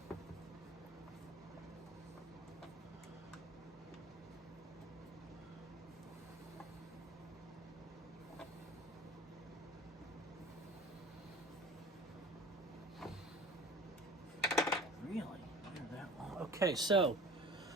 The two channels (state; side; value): normal; both; correlation 0.42